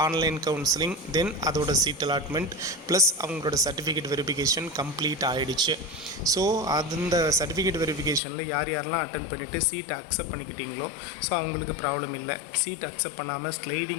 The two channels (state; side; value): drops out; right; at 8.2 s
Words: ஆன்லைன் கவுன்சிலிங், தென் அதோட சீட் அலாட்மெண்ட் ப்ளஸ் அவங்களோட சர்டிஃபிகேட் வெரிஃபிகேஷன் கம்ப்ளீட் ஆகிடுச்சு. ஸோ அந்த சர்டிஃபிகேட் வெரிஃபிகேஷனில் யாரெல்லாம் அட்டன் பண்ணிவிட்டு சீட் அக்செப்ட் பண்ணிக்கிட்டீங்களோ ஸோ அவங்களுக்கு ப்ராப்ளம் இல்லை. சீட் அக்செப்ட் பண்ணாமல்